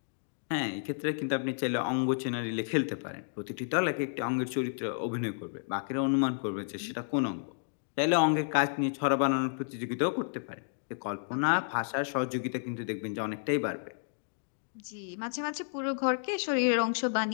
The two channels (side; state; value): right; silent; digital silence